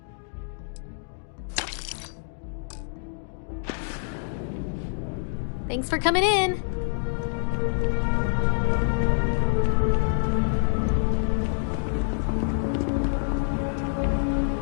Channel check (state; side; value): silent; right; digital silence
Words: Thanks for coming in.